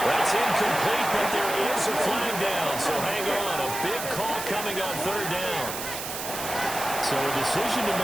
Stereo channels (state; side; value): noise; right; hiss, 7 dB below the sound